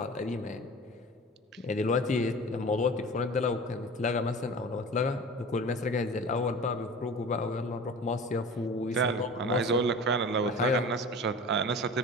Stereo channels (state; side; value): normal; both; correlation 0.37